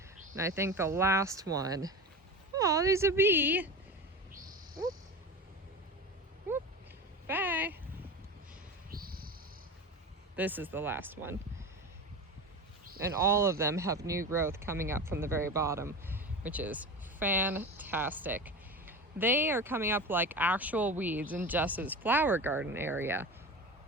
And I think the last one, oh, there's a bee. Whoop. Whoop. Bye. This is the last one. And all of them have new growth coming up from the very bottom, which is fantastic. They are coming up like actual weeds in Jess's flower garden area.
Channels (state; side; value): normal; both; correlation 0.28